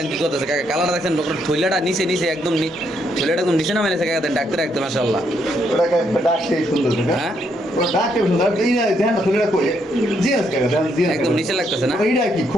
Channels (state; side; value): normal; both; correlation 0.75